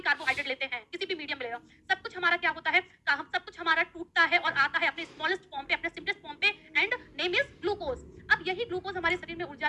कार्बोहाइड्रेट लेते हैं, किसी भी मीडियम ले लो, सब कुछ हमारा क्या होता है, हम सब कुछ हमारा टूटता है और आता है अपने स्मॉलेस्ट फॉर्म पे, अपने सिंपलेस्ट फॉर्म पे, एंड नेम इज ग्लूकोज। अब यही ग्लूकोज हमारे शरीर में ऊर्जा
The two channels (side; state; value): both; identical; correlation 1.00